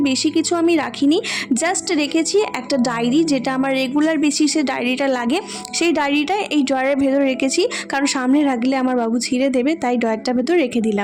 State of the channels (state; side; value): identical; both; correlation 1.00